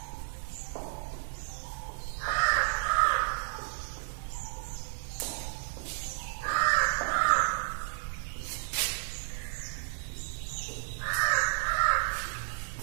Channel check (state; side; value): silent; left; 56 dB below the other